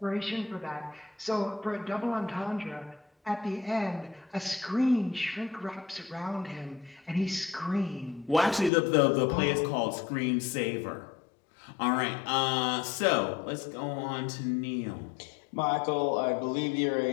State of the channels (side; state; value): right; drops out; at 8.7 s